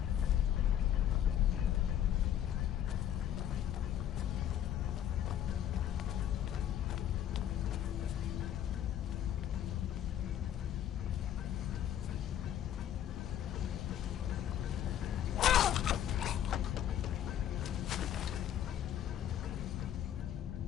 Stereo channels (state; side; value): quieter; right; 10.6 dB